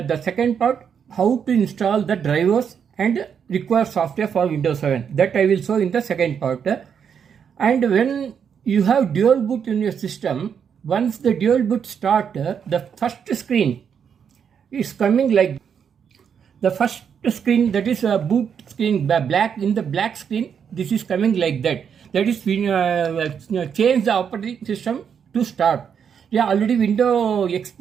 second part, how to install the drivers and require software for Windows 7. That I will show in the second part. And when you have dual boot in your system, once the dual boot start, the first screen is coming like the first screen, that is a boot screen, black. In the black screen, this is coming like that. That is when change the operating system to start. Yeah, already Windows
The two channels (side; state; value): left; quieter; 7.4 dB